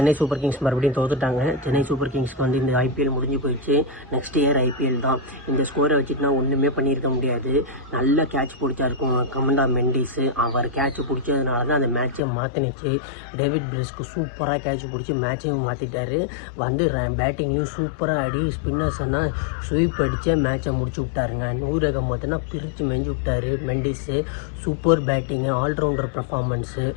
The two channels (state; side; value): drops out; right; at 12.2 s